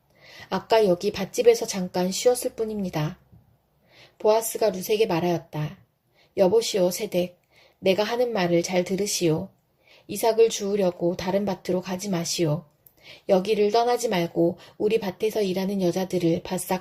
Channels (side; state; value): both; identical; correlation 1.00